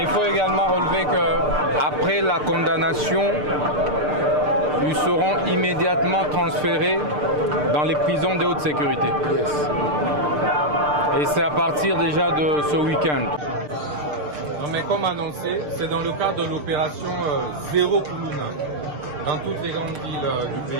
il faut également relever qu'après la condamnation, ils seront immédiatement transférés dans les prisons de haute sécurité. Et c'est à partir déjà de ce week-end. Mais comme annoncé, c'est dans le cadre de l'opération Zéro Kuluna dans toutes les grandes villes du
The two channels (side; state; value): left; late; 6.7 ms